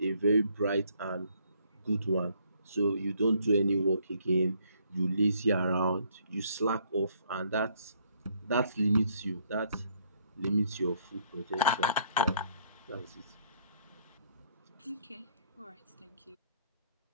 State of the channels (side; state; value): both; inverted; correlation -0.66